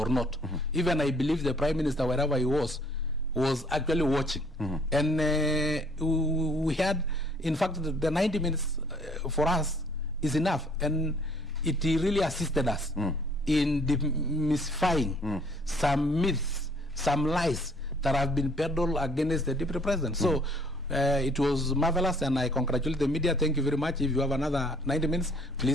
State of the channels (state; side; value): normal; both; correlation 0.60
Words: not. Even I believe the Prime Minister, wherever he was actually watching. And we had, in fact, the 90 minutes for us is enough. And it really assisted us in demystifying some myths, some lies that have been peddled against the Deputy President. So it was marvelous, and I congratulate the media. Thank you very much. If you have another 90 minutes,